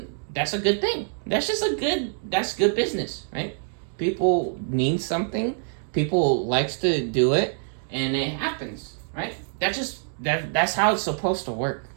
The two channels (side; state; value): left; silent; digital silence